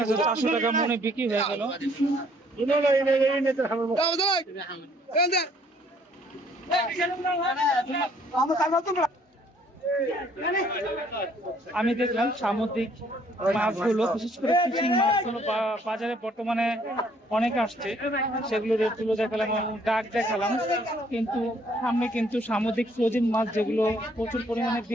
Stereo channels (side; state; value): both; normal; correlation 0.63